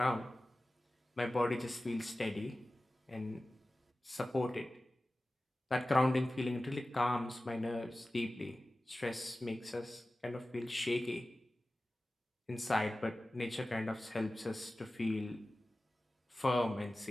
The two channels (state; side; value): normal; both; correlation 0.96